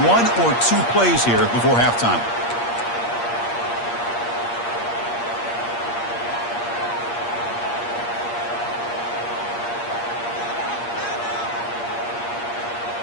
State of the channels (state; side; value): late; right; 8.5 ms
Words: or 2 plays here before halftime.